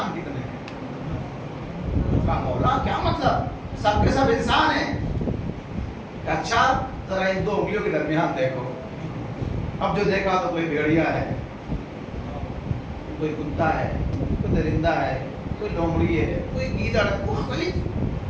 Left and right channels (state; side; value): identical; both; correlation 1.00